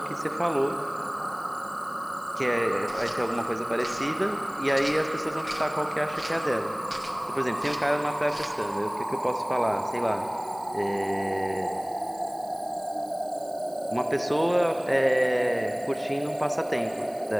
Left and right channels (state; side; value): noise; right; hiss, 23 dB below the sound